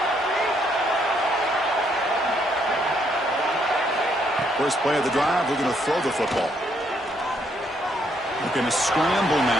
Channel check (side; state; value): both; normal; correlation 0.72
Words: First play of the drive, we're going to throw the football. Looking to scramble